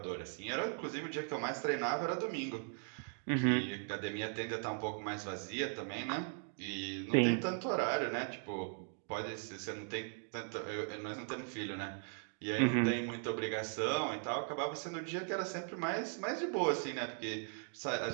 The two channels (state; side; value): silent; left; 52 dB below the other